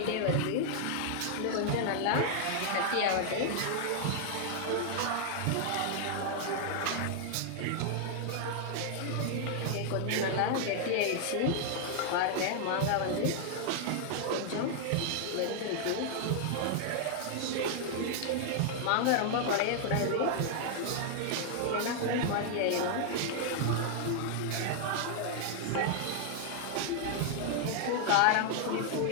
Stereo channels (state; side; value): different; both; correlation 0.00